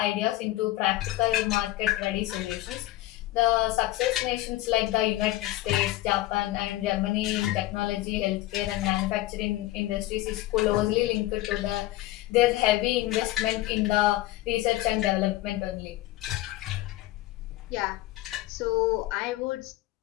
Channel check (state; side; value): quieter; right; 16.6 dB